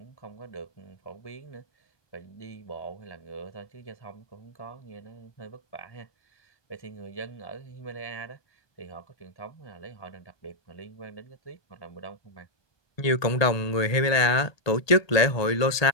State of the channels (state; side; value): late; right; 1.2 ms